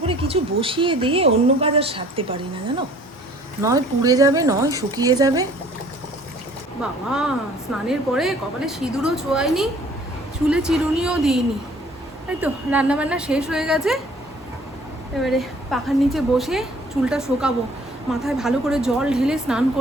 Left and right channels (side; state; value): both; normal; correlation 0.54